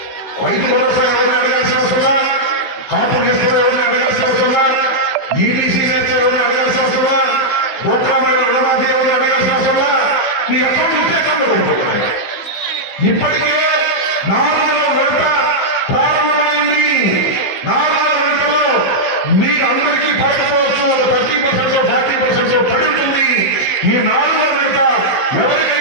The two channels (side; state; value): right; late; 16 ms